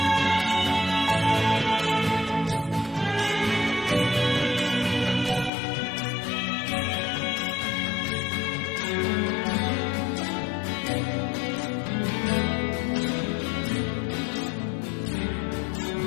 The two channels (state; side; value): drops out; right; at 5.5 s